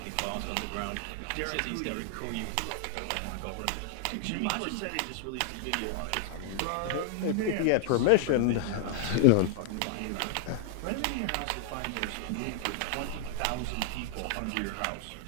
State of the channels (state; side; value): different; both; correlation 0.00